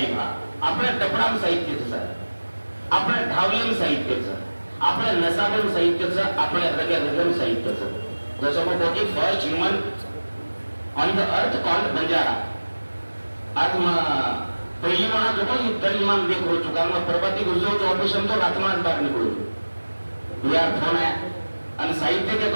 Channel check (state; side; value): inverted; both; correlation -1.00